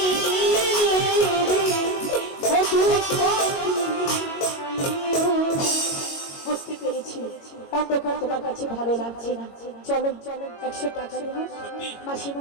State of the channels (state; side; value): late; right; 22 ms